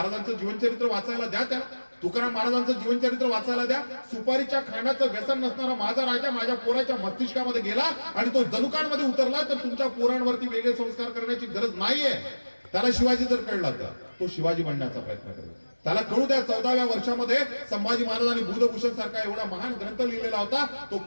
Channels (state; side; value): inverted; both; correlation -1.00